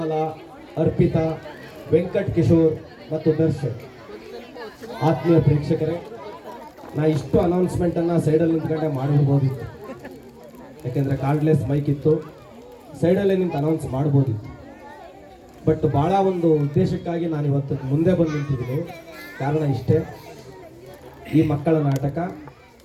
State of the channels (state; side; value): identical; both; correlation 1.00